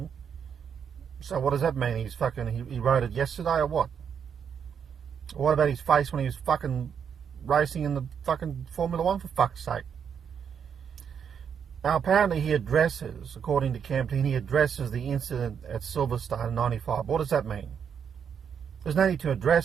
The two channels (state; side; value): quieter; left; 7.5 dB